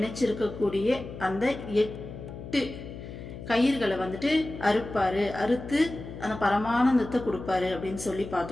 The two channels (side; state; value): left; noise; hum, 11 dB below the sound